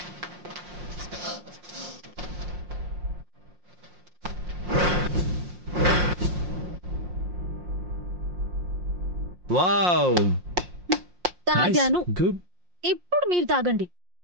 వావ్, తాగాను. గుడ్. ఇప్పుడు మీరు తాగండి.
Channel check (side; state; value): left; late; 5.6 ms